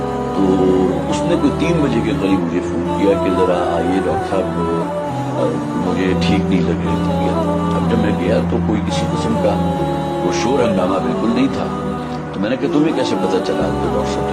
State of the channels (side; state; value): both; identical; correlation 1.00